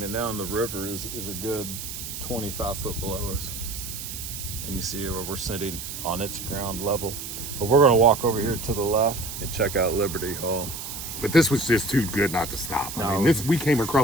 now, and the river is a good 25 foot below us. And you see where we're sitting on its ground level. But we're going to walk over here to the left and check out Liberty Hall. But this was just too good not to stop. I No. mean, we came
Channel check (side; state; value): right; noise; hiss, 8 dB below the sound